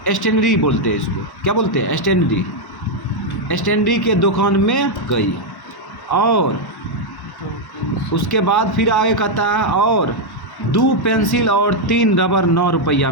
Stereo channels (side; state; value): right; late; 1.1 ms